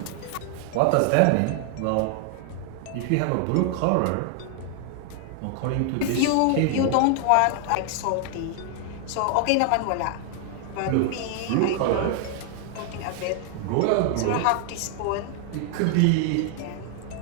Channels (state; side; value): different; both; correlation 0.00